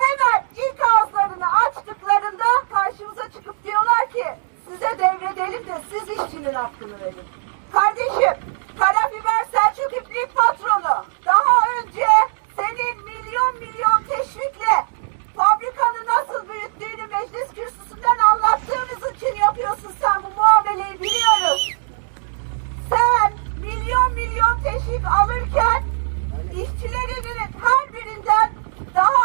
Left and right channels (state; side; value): silent; left; digital silence